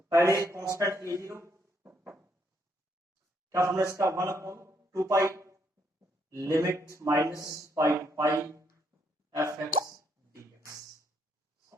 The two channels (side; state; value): both; normal; correlation 0.73